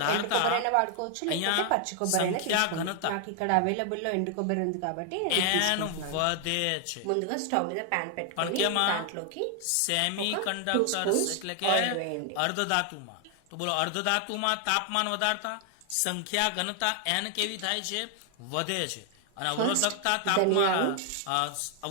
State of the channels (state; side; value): different; both; correlation 0.00